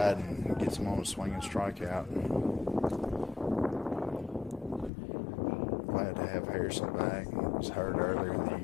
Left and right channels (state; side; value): drops out; right; at 4.9 s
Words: and gets him on a swing and strikeout. Glad to have Harrison back. He was hurt earlier in the